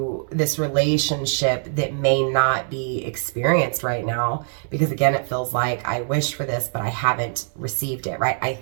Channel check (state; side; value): silent; left; digital silence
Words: this relationship that may not be experienced right now. Because again, it feels like I wish for this, but I haven't received it, right? I